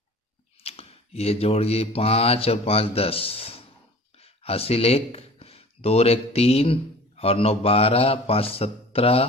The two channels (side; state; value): both; normal; correlation 0.44